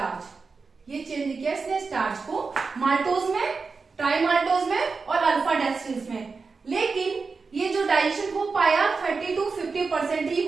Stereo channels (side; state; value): left; quieter; 4.6 dB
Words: ये चेंज किया इसने स्टार्च को माल्टोज में, ट्राइमाल्टोज में और अल्फा डेक्स्ट्रिन्स में। लेकिन ये जो डाइजेशन हो पाया 30 to 50% ही